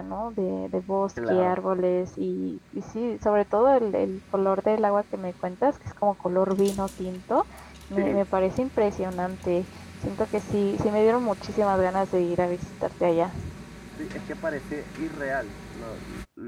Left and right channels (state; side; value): identical; both; correlation 1.00